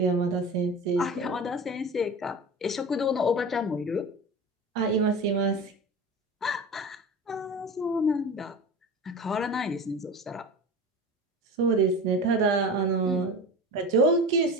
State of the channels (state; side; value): normal; both; correlation 0.32